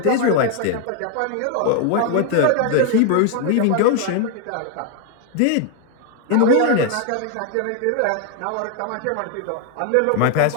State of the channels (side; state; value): both; different; correlation 0.00